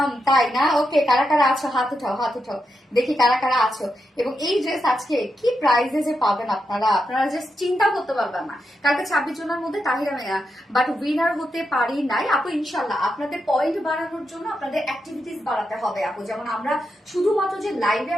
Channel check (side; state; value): both; normal; correlation 0.85